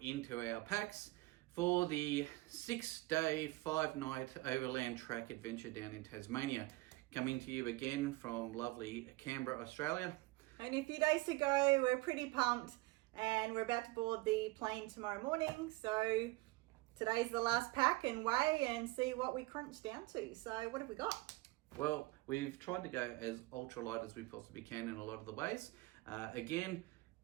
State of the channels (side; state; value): left; quieter; 21.6 dB